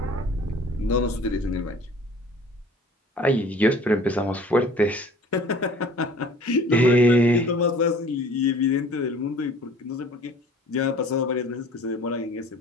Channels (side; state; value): both; normal; correlation 0.49